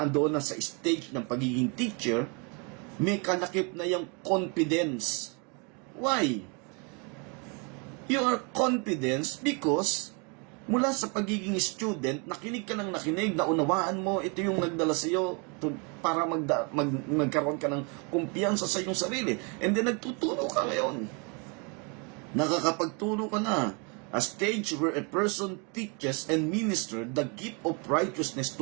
na sa stage ng pagiging teacher, may kalakip na yung confidence. Why? You are confident because mula sa pagiging student, nakinig ka ng nakinig, naunawaan mo, ito yung nagdala sa iyo para magkaroon ka ng kumpiyansa sa iyong sarili. And then nagtuturo ka ngayon. Nakakapagturo ka na. A stage where a person teaches and ministers the gift of righteousness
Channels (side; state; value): left; quieter; 33.4 dB